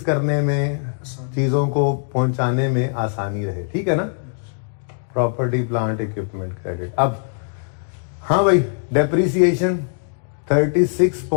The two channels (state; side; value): silent; right; digital silence